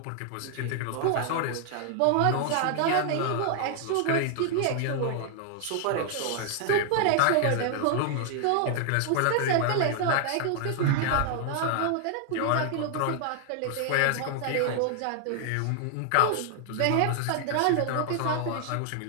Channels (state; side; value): different; both; correlation 0.00